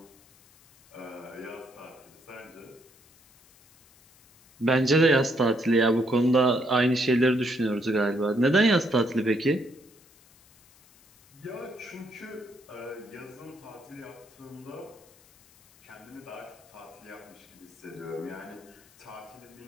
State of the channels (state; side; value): noise; left; hiss, 28 dB below the sound